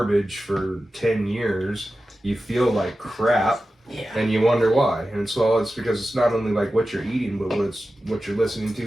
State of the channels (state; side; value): normal; both; correlation 0.93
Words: for 10 years. You feel like crap, Yeah. and you wonder why. And so it's because it's not only like what you're eating, but what you're listening to,